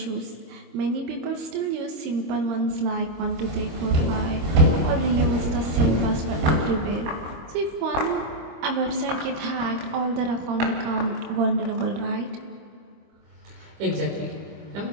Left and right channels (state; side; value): late; left; 25 ms